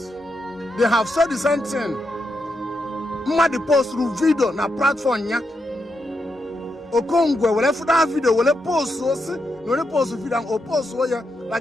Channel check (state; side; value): normal; both; correlation 0.83